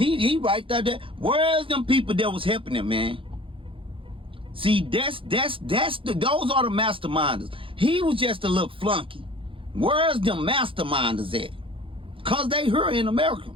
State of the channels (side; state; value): left; late; 0.25 ms